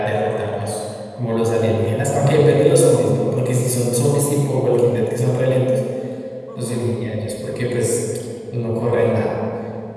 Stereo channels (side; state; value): both; identical; correlation 1.00